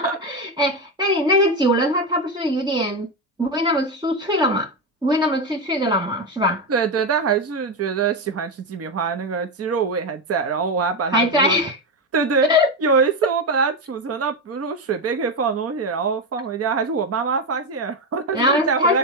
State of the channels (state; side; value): normal; both; correlation 0.12